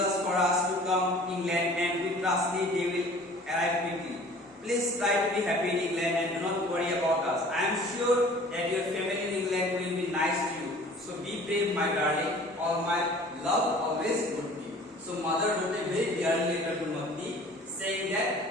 for us to come to England and we trust they will arrive quickly. Please try to be happy in England and do not worry about us. I am sure that your family in England will be nice to you. So be brave, my darling. All my love always would be. So mother wrote a very dear letter to Matti saying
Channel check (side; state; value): both; normal; correlation 0.48